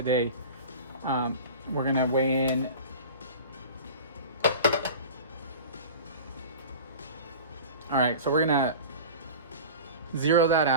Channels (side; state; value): both; inverted; correlation -0.36